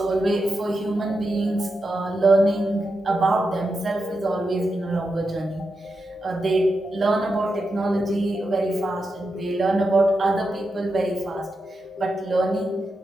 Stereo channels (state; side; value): normal; both; correlation 0.87